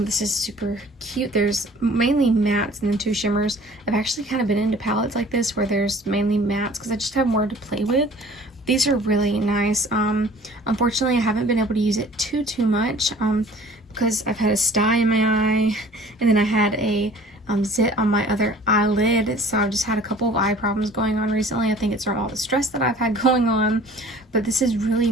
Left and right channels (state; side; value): normal; both; correlation 0.49